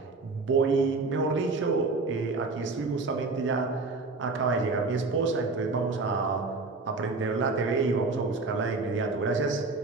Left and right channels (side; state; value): left; quieter; 3.7 dB